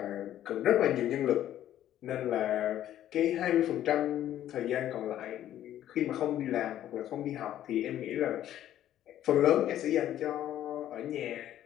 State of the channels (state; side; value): quieter; right; 12.0 dB